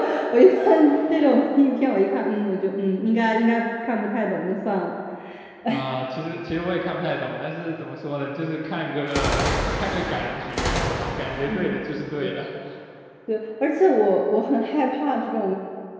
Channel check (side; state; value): both; identical; correlation 1.00